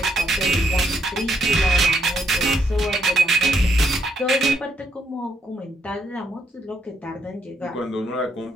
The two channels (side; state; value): both; normal; correlation 0.75